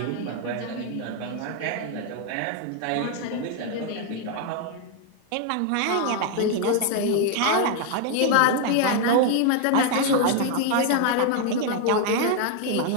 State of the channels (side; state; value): both; different; correlation 0.01